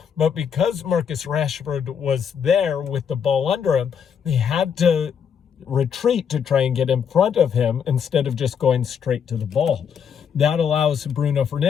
But because Marcus Rashford was there with the ball under him, they had to retreat to try and get in front of him instead of just going straight to the ball. That allows Bruno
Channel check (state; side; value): quieter; right; 7.5 dB